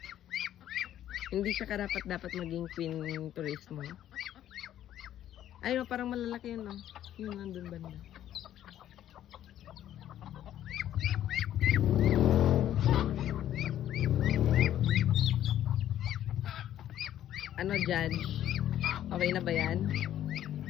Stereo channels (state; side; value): quieter; right; 11.7 dB